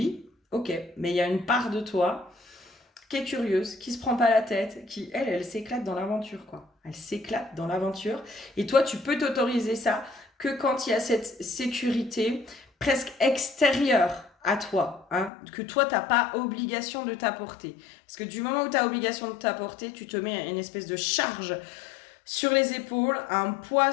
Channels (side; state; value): right; drops out; at 15.3 s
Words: ok, mais il y a une part de toi qui est curieuse, qui se prend pas la tête, qui, elle s'éclate dans l'aventure, quoi. Elle s'éclate dans l'aventure. Et toi, tu peux t'autoriser ça que quand il y a cette sécurité presque extérieure à toi, hein, que toi, t'as pas obligation de t'apporter. Parce que du moment où tu as obligation de t'apporter, tu te mets une espèce de charge sur les épaules, un poids